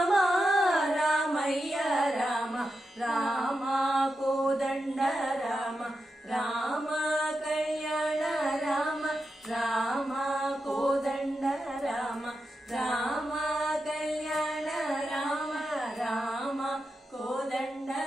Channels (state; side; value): normal; both; correlation 0.89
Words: రామయ్య రామ రామ కోదండ రామ రామ కళ్యాణ రామ రామ కోదండ రామ రామ